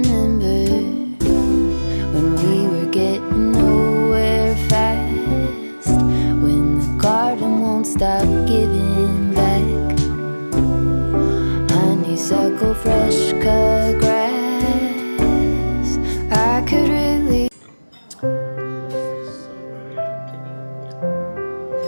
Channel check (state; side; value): inverted; both; correlation -1.00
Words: when we were getting nowhere fast, when the garden won't stop giving back honeysuckle, fresh cut grass. I could really